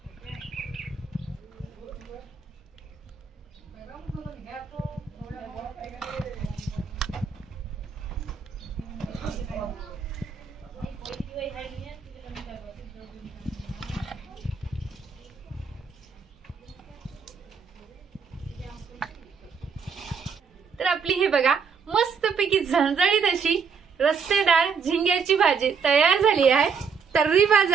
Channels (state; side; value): quieter; left; 5.9 dB